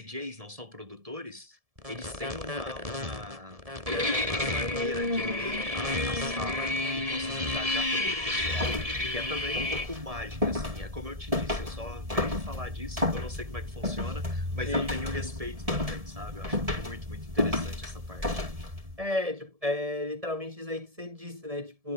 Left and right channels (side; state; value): left; late; 1.7 ms